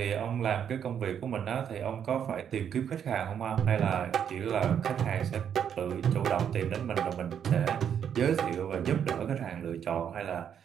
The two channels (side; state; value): left; quieter; 8.5 dB